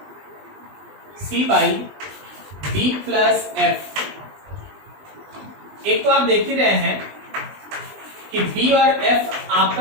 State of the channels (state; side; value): late; left; 20 ms